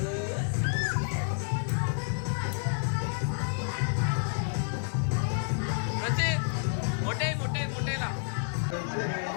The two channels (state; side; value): silent; right; digital silence